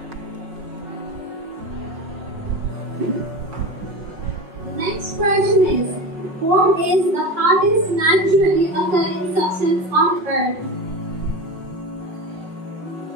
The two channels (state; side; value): late; left; 5.4 ms